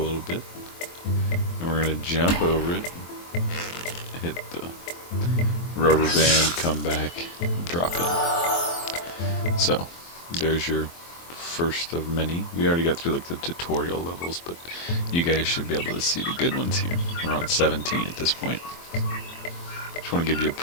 bit. And we're gonna jump over it, hit the rubber band, come back, drop it. So, there's your first of many. We already got through like the tutorial levels, but you guys should be able to see the good ones here. We're on 17 at this point. Just want to give you a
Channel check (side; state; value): right; late; 23 ms